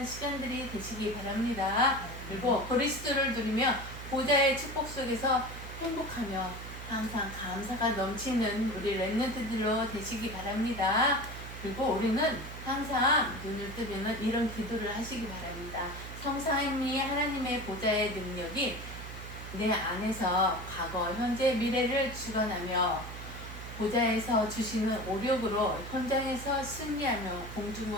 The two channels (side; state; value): right; noise; hum, 11 dB below the sound